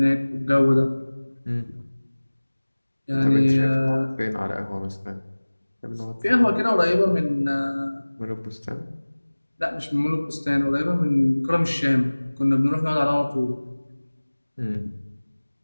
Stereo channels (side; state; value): both; inverted; correlation -1.00